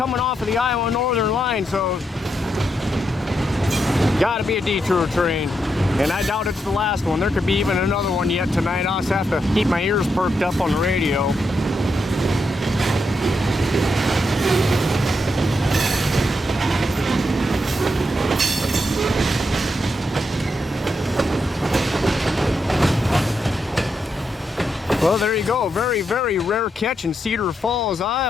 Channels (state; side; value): normal; both; correlation 0.82